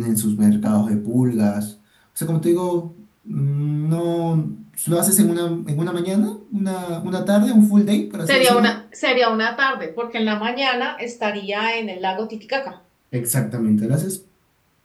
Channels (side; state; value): both; identical; correlation 1.00